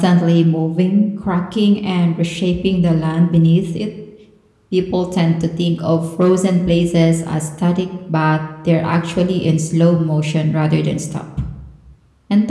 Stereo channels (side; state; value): both; identical; correlation 1.00